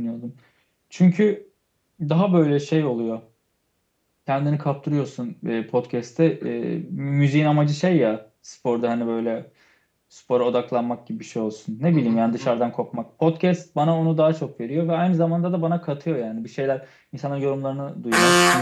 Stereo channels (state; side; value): identical; both; correlation 1.00